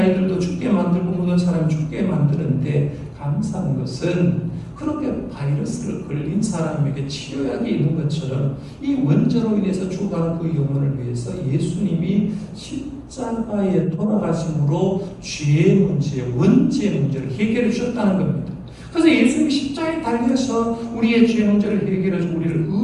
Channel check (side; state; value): both; identical; correlation 1.00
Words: 죽게 만들고 모든 사람이 죽게 만드는데 감사한 것은 그렇게 바이러스를 걸린 사람에게 치료약이 있는 것처럼 이 원죄로 인해서 죽어가는 그 영혼을 위해서 예수님이 십자가에 돌아가심으로 죄의 문제, 원죄의 문제를 해결해 주셨다는 겁니다. 그래서 예수님이 십자가에 달려서 우리의 죄 문제를 해결해 주고 우리를